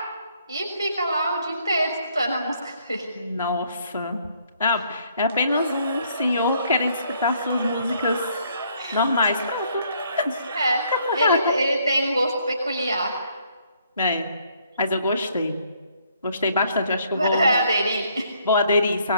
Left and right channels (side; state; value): both; inverted; correlation -0.67